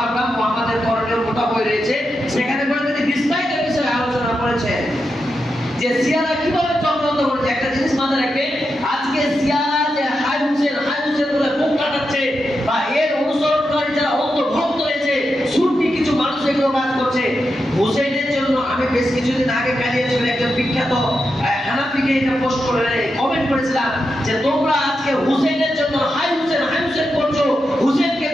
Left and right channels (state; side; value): normal; both; correlation 0.87